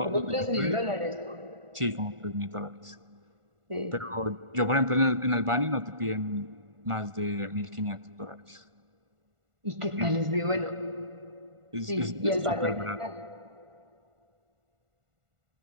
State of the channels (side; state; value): left; late; 1.5 ms